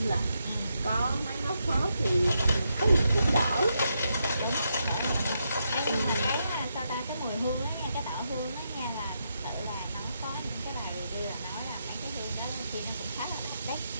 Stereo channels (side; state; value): both; inverted; correlation -0.81